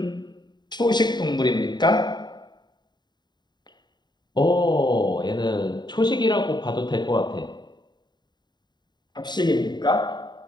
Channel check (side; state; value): right; late; 0.21 ms